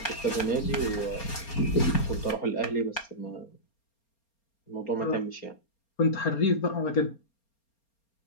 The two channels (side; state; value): right; late; 4.3 ms